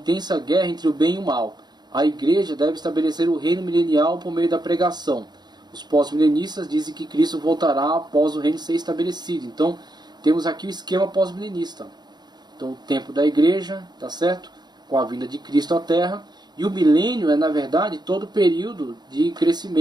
guerra entre o bem e o mal. A igreja deve estabelecer o reino milenial por meio da pregação. Os pós-milenistas dizem que Cristo voltará após o reino ser estabelecido. Então, temos aqui o esquema pós-milenista. Então, o tempo da igreja, tá certo? Com a vinda de Cristo à Terra. E o milênio é, na verdade, todo o período de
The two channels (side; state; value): left; late; 0.20 ms